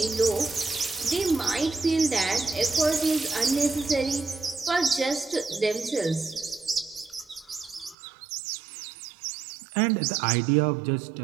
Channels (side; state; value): left; drops out; at 8.0 s